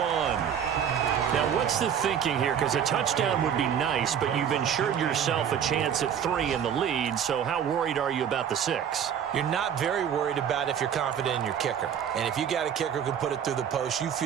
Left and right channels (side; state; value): left; quieter; 8.5 dB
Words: Now, what's the thinking here? Because a touchdown would be nice, but you've ensured yourself a chance at 3 in the lead, so how worried are you about the 6? You're not very worried about if you're confident in your kicker. And if you got a kicker who can put it through the post, you